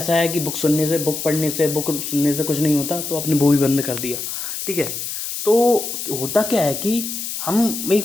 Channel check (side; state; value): left; noise; hiss, 5 dB below the sound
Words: है कि बुक सुनने से, बुक पढ़ने से, बुक सुनने से कुछ नहीं होता, तो आपने वो भी बंद कर दिया। ठीक है, तो होता क्या है कि हम